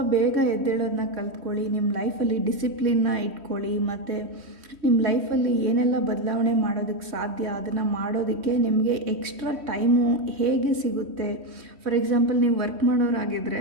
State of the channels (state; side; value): late; left; 3.1 ms